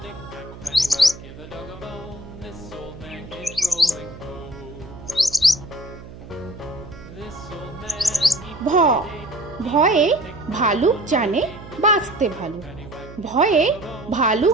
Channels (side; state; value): right; noise; hum, 16 dB below the sound